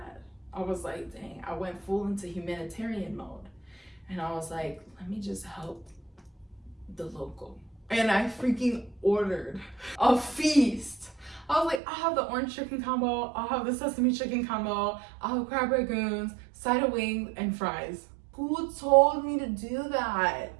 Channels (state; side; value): drops out; left; at 11.8 s